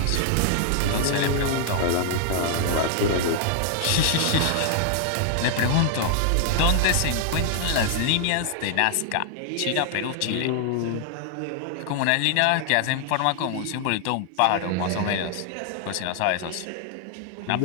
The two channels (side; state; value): both; different; correlation 0.00